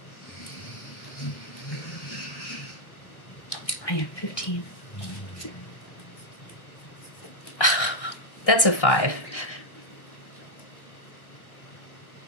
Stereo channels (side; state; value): right; late; 1.3 ms